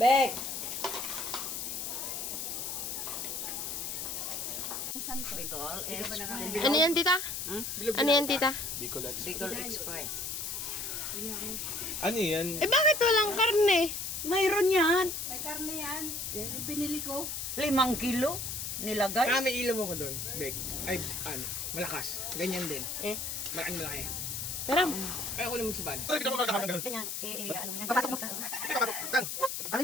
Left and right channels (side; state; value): left; noise; hiss, 4 dB below the sound